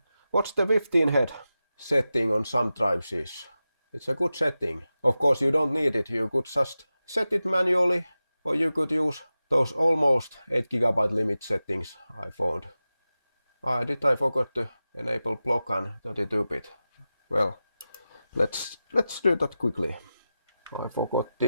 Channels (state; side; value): inverted; both; correlation -0.94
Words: the 15 head setting on some drives is. It's a good setting. Of course you don't need it, you could just set it manually, or you could use those almost 8 GB limit settings I found. Did I forget to enable block and 32-bit? Well, let's do that quickly. I forgot